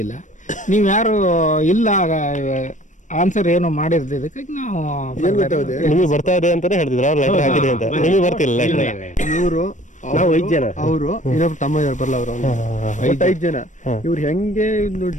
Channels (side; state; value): right; late; 0.36 ms